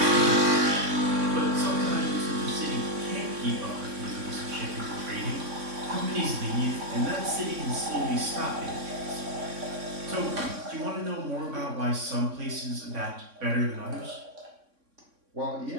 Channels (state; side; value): late; left; 3.6 ms